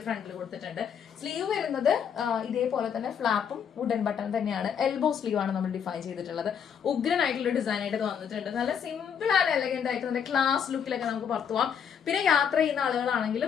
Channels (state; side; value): quieter; right; 7.7 dB